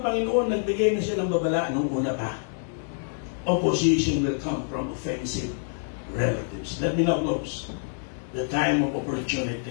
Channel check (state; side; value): silent; right; 60 dB below the other